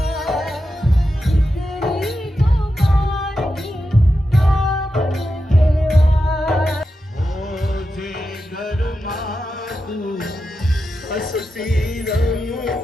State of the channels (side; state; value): both; normal; correlation 0.89